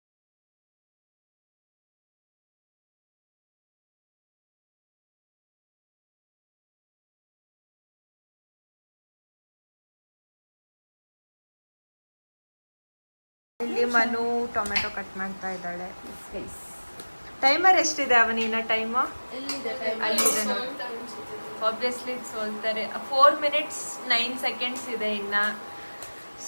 ಇಲ್ಲಿ ಮನು ಟೊಮೆಟೊ ಕಟ್ ಮಾಡ್ತಾ ಇದ್ದಾಳೆ. ಟೈಮರ್ ಎಷ್ಟಿದೆ ಅವನಿನ ಟೈಮು? ಎಲ್ಲಿದೆ ಅಲ್ಲಿದೆ ನೋಡಿ. ಆಬ್ವಿಯಸ್ಲಿ ಸೋಲ್ತಾರೆ. 4 minutes 9 seconds ಇದೆ ಇನ್ನ.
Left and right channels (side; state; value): both; inverted; correlation -1.00